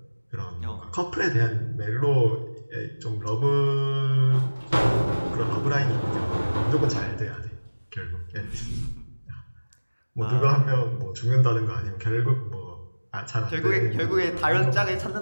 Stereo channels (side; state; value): both; inverted; correlation -1.00